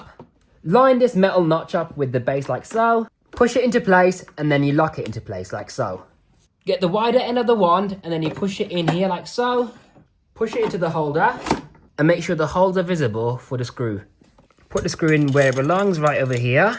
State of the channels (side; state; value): both; identical; correlation 1.00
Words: line this metal notch up with the base like so, push it into place, and then you lock it into place like so. Get the wider end of the wand and then you push it in here like so, push it into the holder, and make sure the holes are visible for the screw. Put the screw in where it belongs, right over